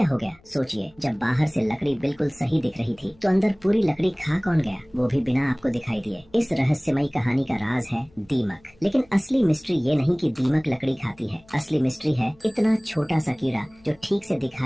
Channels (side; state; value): left; noise; hum, 29 dB below the sound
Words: हो गया? सोचिए, जब बाहर से लकड़ी बिल्कुल सही दिख रही थी तो अंदर पूरी लकड़ी खा कौन गया, वो भी बिना आपको दिखाई दिए। इस रहस्यमयी कहानी का राज है दीमक। लेकिन असली मिस्ट्री ये नहीं कि दीमक लकड़ी खाती है। असली मिस्ट्री है इतना छोटा सा कीड़ा जो ठीक से